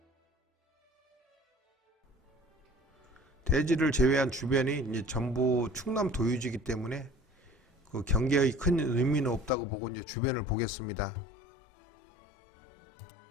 대지를 제외한 주변이 이제 전부 충남 도유지이기 때문에 그 경계의 큰 의미는 없다고 보고 이제 주변을 보겠습니다.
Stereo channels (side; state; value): right; drops out; at 9.5 s